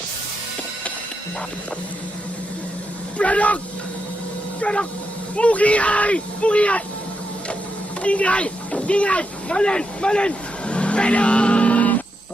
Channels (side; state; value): both; normal; correlation 0.84